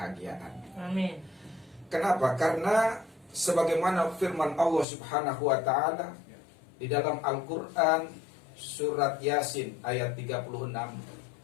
Amin. Kenapa? Karena sebagaimana firman Allah Subhanahu wa Ta'ala di dalam Al-Qur'an surat Yasin ayat 36,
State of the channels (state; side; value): drops out; right; at 4.9 s